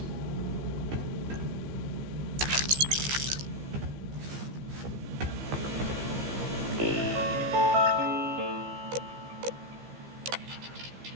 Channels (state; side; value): late; left; 15 ms